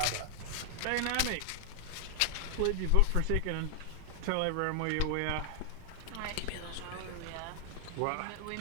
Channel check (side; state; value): both; different; correlation 0.00